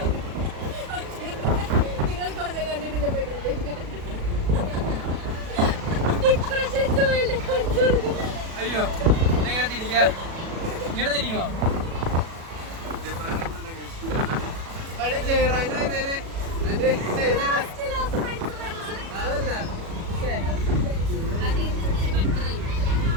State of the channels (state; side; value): late; left; 37 ms